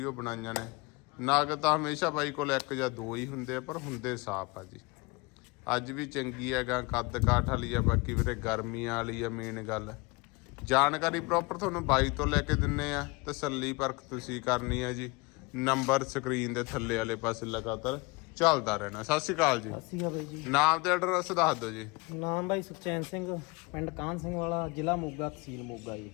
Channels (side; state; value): right; quieter; 25.9 dB